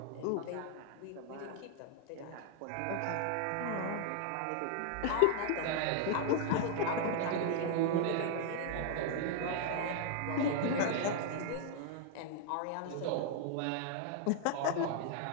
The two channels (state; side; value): different; both; correlation 0.00